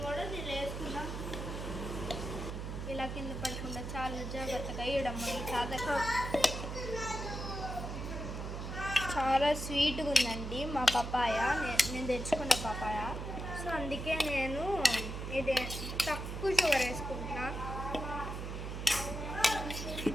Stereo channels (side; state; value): right; noise; hum, 5 dB below the sound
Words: కూడా నేను వేసుకున్నాం. ఇలా కింద పడకుండా చాలా జాగ్రత్తగా వేయడం సాధక. చాలా స్వీట్గా ఉందండి మా పప్పాయ, నేను తెచ్చుకున్న పప్పాయ. సో అందుకే నేను ఇది తక్కువ షుగర్ వేసుకుంటున్నా.